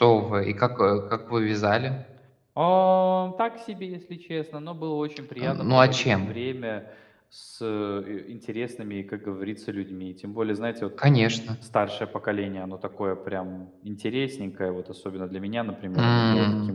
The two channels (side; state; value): both; identical; correlation 1.00